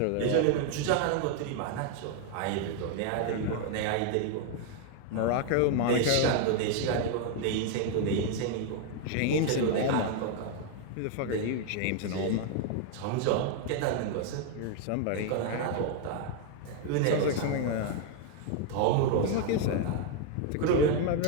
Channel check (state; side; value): different; both; correlation 0.00